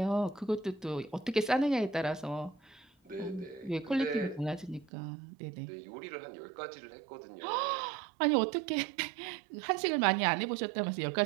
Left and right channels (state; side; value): drops out; left; at 4.9 s